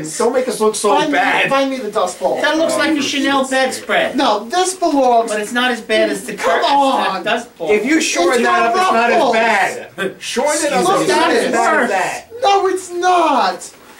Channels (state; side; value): identical; both; correlation 1.00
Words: Don't make us look so bad. Find me the Dust Bowl. That looks like a Chanel bedspread. No, this belongs. But it's not as bad as the Come curtains on. that Dust Bowl. If you shorten It's that up, it's not as ruffles. bad. Shorten it up, Look it's at not it. as bad as that. No, it's not.